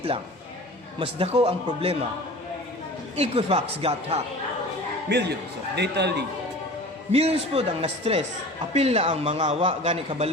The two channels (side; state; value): both; normal; correlation 0.39